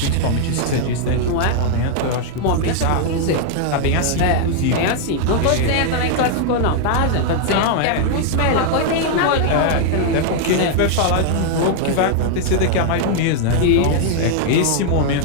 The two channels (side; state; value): both; different; correlation 0.00